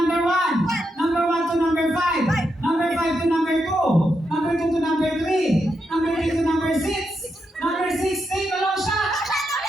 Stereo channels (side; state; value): both; normal; correlation 0.83